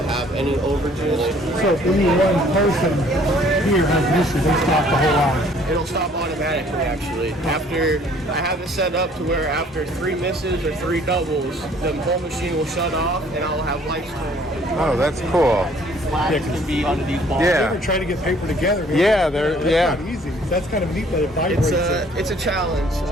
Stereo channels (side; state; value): both; normal; correlation 0.58